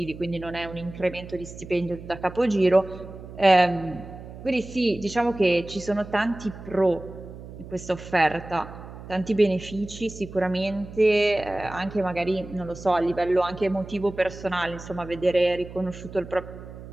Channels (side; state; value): right; noise; hum, 14 dB below the sound